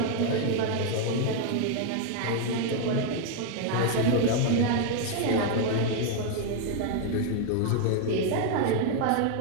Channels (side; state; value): both; different; correlation 0.01